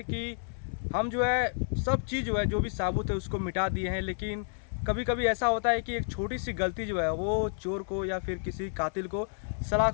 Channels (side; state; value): right; silent; 58 dB below the other